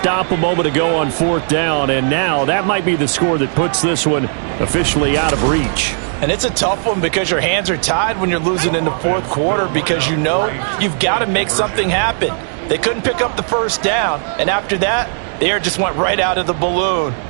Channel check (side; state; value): left; silent; digital silence